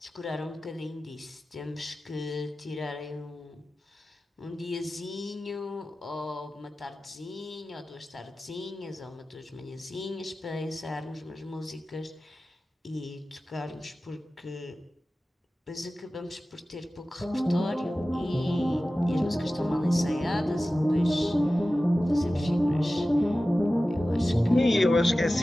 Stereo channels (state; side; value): normal; both; correlation 0.95